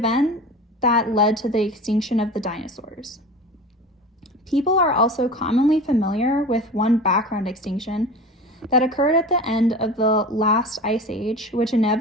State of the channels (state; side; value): normal; both; correlation 0.34